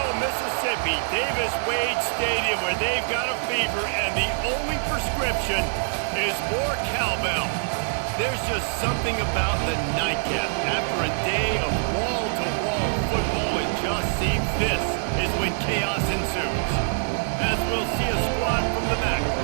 Mississippi, Davis-Wade Stadium, where they've got a fever, and the only prescription is more cowbell. There's just something about the nightcap. After a day of wall-to-wall football, it just seems this is when chaos ensues. As we'll see a squad from the back,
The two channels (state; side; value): silent; left; digital silence